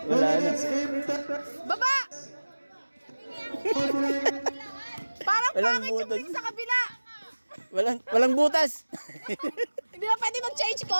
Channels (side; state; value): both; inverted; correlation -1.00